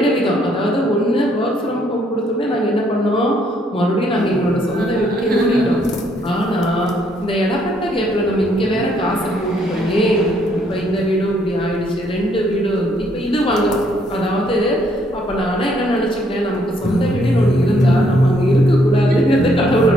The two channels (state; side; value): normal; both; correlation 0.69